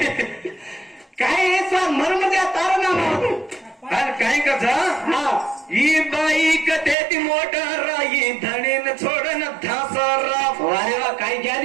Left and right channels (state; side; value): drops out; left; at 7.0 s